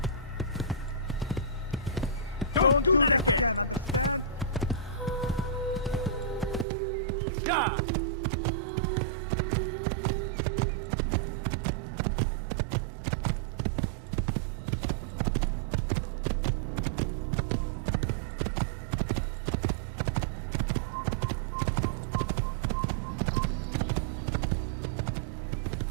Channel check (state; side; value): drops out; left; at 6.7 s